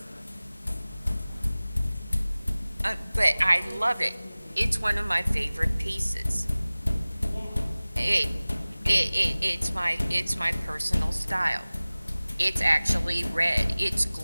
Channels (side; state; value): both; inverted; correlation -0.99